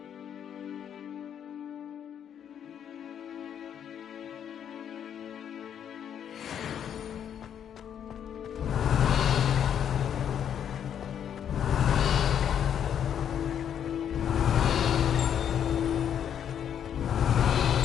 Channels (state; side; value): quieter; right; 9.0 dB